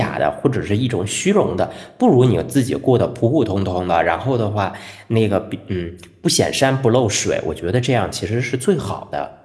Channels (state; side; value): identical; both; correlation 1.00